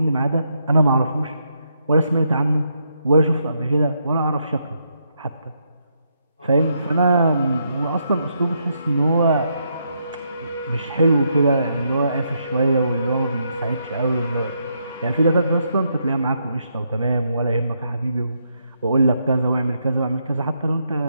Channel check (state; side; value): inverted; both; correlation -0.78